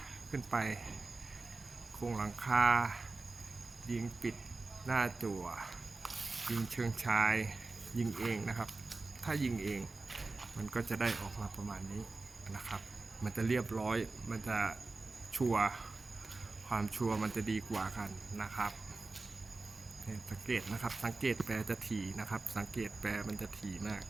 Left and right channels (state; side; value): quieter; left; 3.6 dB